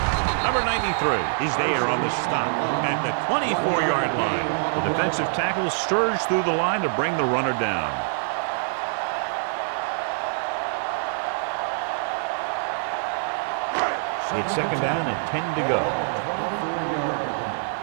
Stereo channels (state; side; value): silent; left; 62 dB below the other